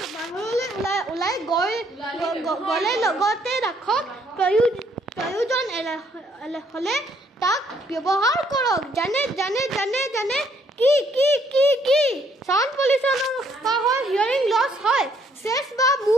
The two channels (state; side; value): normal; both; correlation 0.67